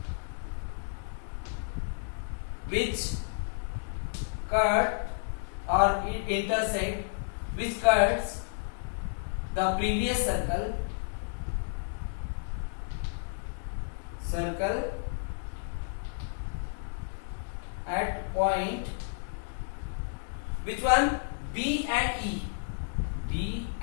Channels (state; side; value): silent; right; digital silence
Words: which cut or intersect, which cuts the previous circle at point, which one? B and E.